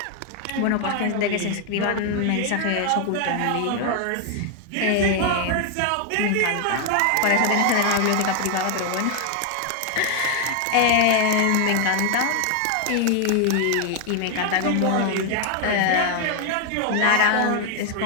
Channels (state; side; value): different; both; correlation 0.00